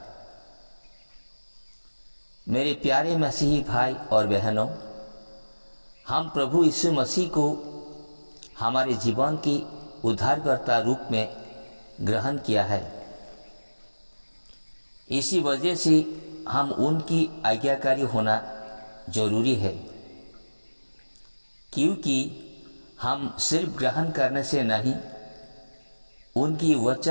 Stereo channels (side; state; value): both; inverted; correlation -1.00